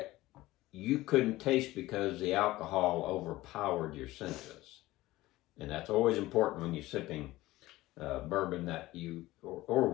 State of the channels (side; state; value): right; quieter; 17.8 dB